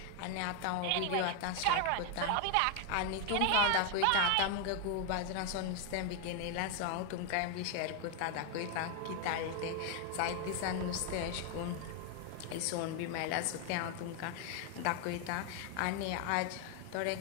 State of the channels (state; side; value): different; both; correlation 0.01